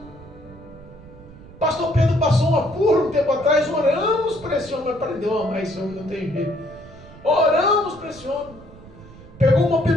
Pastor Pedro passou um apuro um tempo atrás, oramos para esse homem, mas aprendeu a amar esse homem, não tem jeito. Oramos para esse homem. Pegou uma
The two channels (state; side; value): noise; right; rumble, 19 dB below the sound